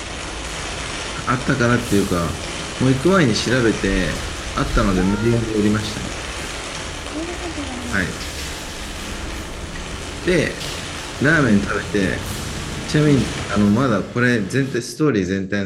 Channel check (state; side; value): identical; both; correlation 1.00